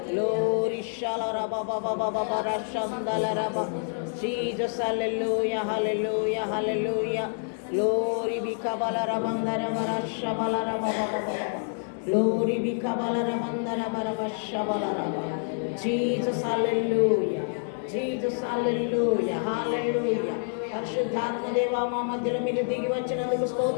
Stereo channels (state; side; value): silent; right; 60 dB below the other